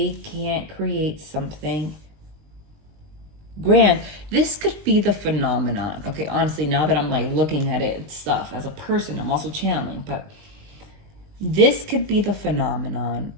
can't create something grand. This could be the phenomenon. Okay, honestly, now that I'm like looking at it and stuff as a person, I'm also channeling, but this could be the phenomenon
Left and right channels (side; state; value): left; late; 20 ms